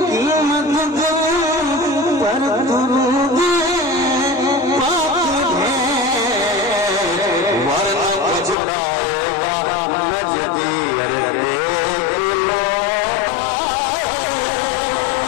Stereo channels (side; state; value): right; drops out; at 8.6 s